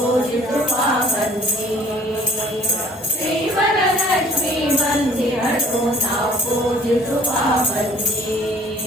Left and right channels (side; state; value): both; normal; correlation 0.55